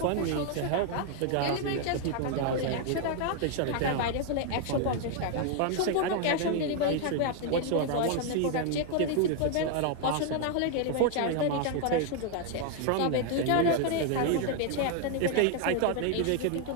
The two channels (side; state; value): both; different; correlation 0.00